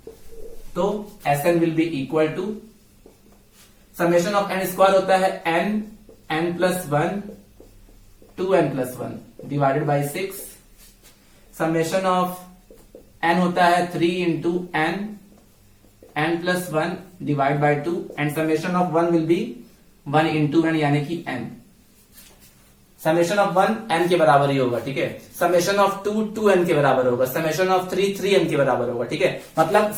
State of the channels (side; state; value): both; identical; correlation 1.00